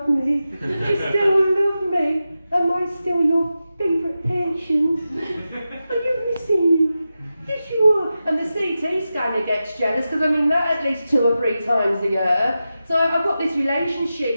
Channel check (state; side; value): inverted; both; correlation -0.92